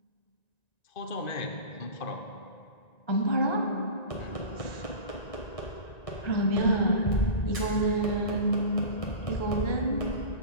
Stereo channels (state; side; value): late; right; 1.9 ms